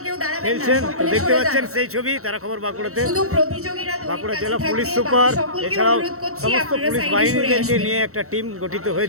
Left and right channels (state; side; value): late; left; 0.64 ms